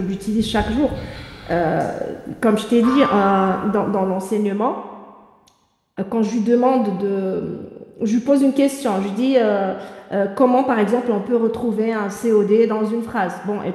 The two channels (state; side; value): identical; both; correlation 1.00